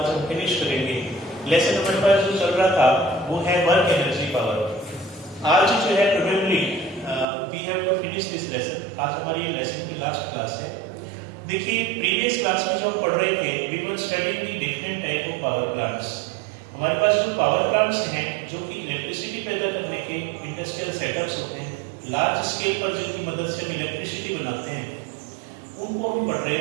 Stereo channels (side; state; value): left; drops out; at 7.2 s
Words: हम फिनिश करेंगे। लेसन हमारे पास जो चल रहा था वो है वर्क एनर्जी पावर। आज जो है probably we have to finish this lesson. आज हमारी लेसन की लास्ट क्लास है। देखिए प्रीवियस क्लास में जो हम पढ़ रहे थे we were studying the different type of power plants. हमारे पास जो पावर प्लांट्स हैं जो कि इलेक्ट्रिसिटी पैदा करने के इंडस्ट्रियल सेटअप्स होते हैं, लार्ज स्केल पर जिनकी मदद से हम इलेक्ट्रिसिटी बनाते हैं, उनको हम पढ़ रहे